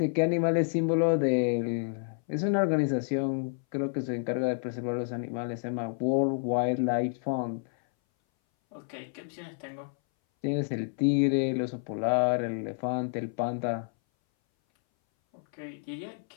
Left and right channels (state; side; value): silent; right; 58 dB below the other